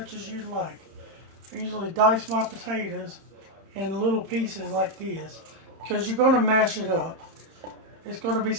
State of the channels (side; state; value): left; late; 31 ms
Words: as you like. I usually dice my potatoes in little pieces like this, because you're going to mash it up. It's going to be